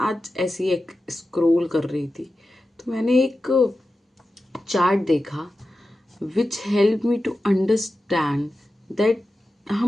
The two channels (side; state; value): both; normal; correlation 0.93